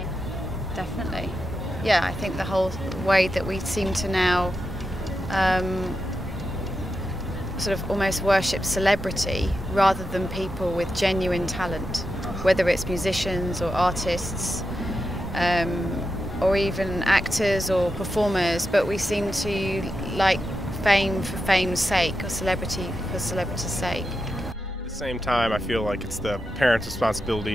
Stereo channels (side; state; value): both; normal; correlation 0.91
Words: Definitely. Yeah, I think the whole way that we seem to now sort of almost worship celebrity rather than people with genuine talent, whether it's musicians or artists or even actors or performers, but we seem to like fame for fame's sake or celebrity for celebrity's sake. At the same time, I feel like it's the parents'